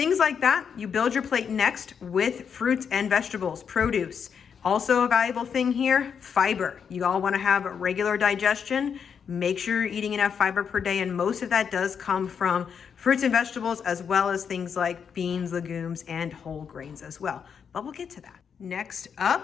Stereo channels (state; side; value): quieter; right; 7.0 dB